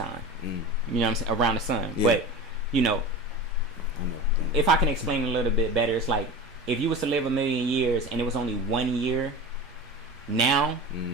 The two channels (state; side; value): normal; both; correlation 0.31